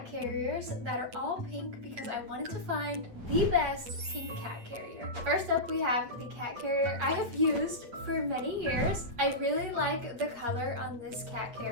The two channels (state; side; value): late; left; 8.5 ms